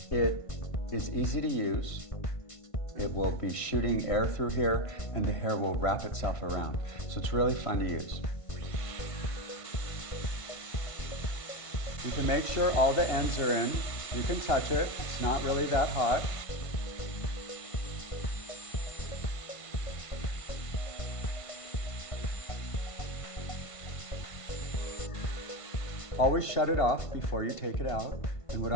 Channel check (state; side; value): late; right; 1.5 ms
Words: it is easy to use. It will be shooting air through here and the hair will wrap itself around. So it's really fun to use. You can make sure all the ends are in. You can touch it, it's not really that hot. Always shut it off before you take it out. And what